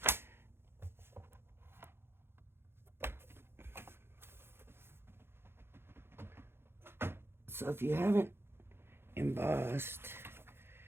So if you haven't embossed,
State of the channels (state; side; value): late; left; 0.11 ms